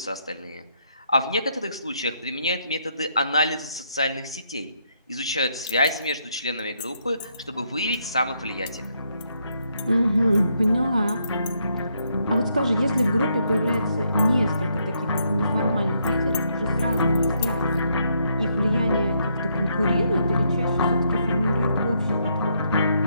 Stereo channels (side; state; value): both; inverted; correlation -0.75